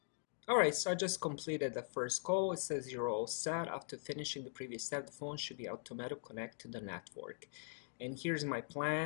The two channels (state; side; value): silent; right; digital silence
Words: Alright, so I just completed the first call. It says you're all set. After finishing the previous step, the phone should be automatically connect to the network. And here's my